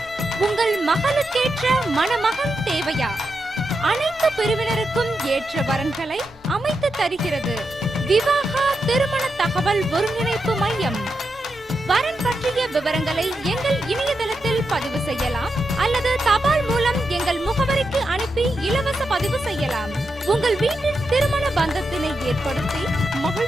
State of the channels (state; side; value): normal; both; correlation 0.86